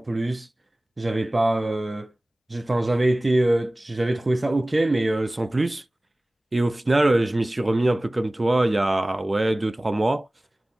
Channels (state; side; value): normal; both; correlation 0.98